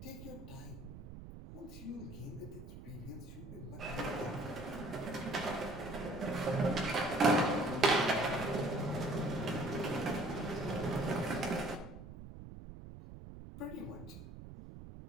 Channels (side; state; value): right; noise; rumble, 13 dB below the sound